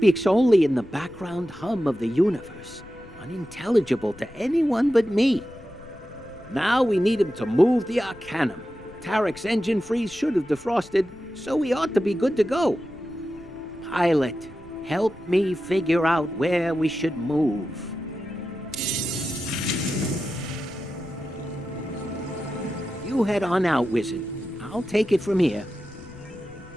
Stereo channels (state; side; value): noise; left; rumble, 20 dB below the sound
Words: only in the background hum of the universe, unintelligible to anyone but me. Now we need him to move the Arcanium. Tarek's engine freeze should have defrosted, so we ought to be good to go. Pilot, help me figure out where we should move. You head on out, Wizard. I'll take it from here.